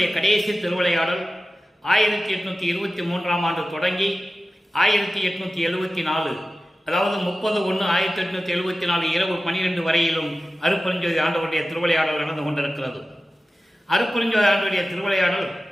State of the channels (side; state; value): both; normal; correlation 0.95